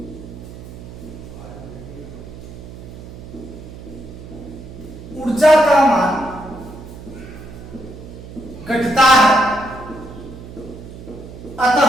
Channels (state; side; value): noise; right; hum, 14 dB below the sound